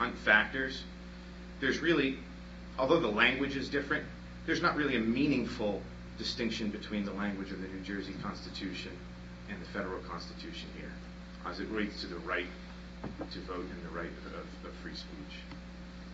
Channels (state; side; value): identical; both; correlation 1.00